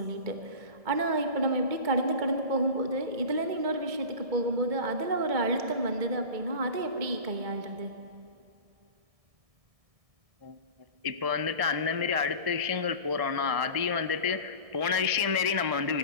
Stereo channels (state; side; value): late; left; 1.6 ms